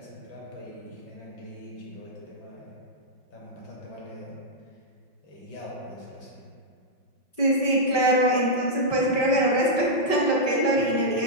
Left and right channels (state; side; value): late; right; 5.2 ms